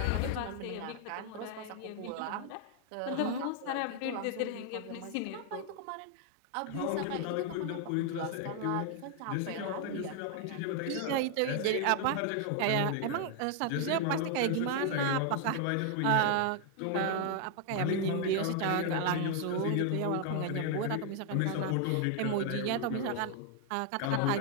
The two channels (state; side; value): different; both; correlation 0.00